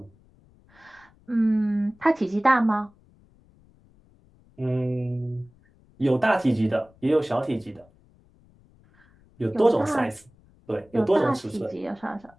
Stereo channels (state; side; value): noise; left; rumble, 30 dB below the sound